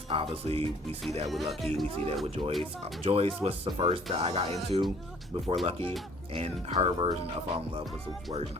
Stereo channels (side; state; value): both; normal; correlation 0.57